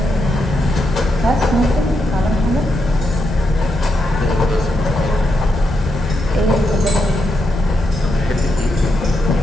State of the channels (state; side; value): normal; both; correlation 0.83